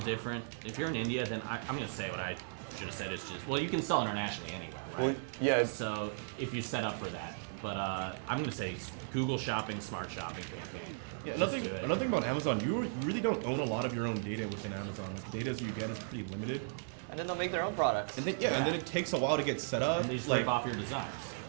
If you're in India, then I'm going to say what I should have said. It's just, well, you can sell internationally anyway, right? Well, yeah, So if you set up for that. But I'm going to say Google Shopping, Smart Shopping campaign. Yeah, Just another do it. thing about Amazon, you really don't own a lot of your own data within Amazon. The data you get is pretty limited. And then they'll make their own products. And then and then it takes a while to get set up. And they just like, rip off your designs.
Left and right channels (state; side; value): silent; left; 54 dB below the other